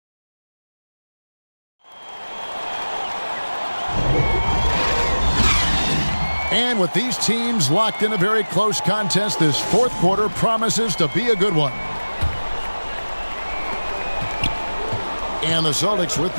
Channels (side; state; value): both; inverted; correlation -1.00